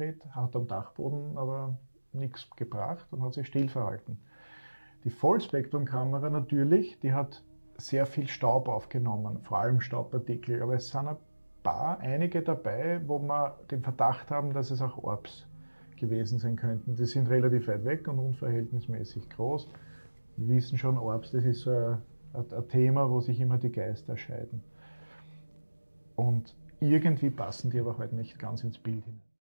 hat am Dachboden aber nichts gebracht und hat sich still verhalten. Die Vollspektrumkamera natürlich, die hat sehr viel Staub aufgenommen, vor allem Staubpartikel, aber es sind einige dabei, wo wir den Verdacht haben, dass es auch Orbs gewesen sein könnten. Die sind relativ weit weg und unverhältnismäßig groß. Wir wissen schon, Orbs, das ist so ein Thema, wo sich immer die Geister scheiden. Und irgendwie passen die aber halt nicht ganz ins Bild hinein.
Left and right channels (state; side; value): inverted; both; correlation -1.00